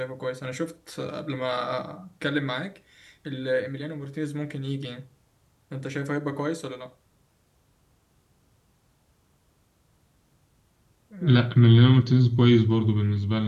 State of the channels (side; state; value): both; identical; correlation 1.00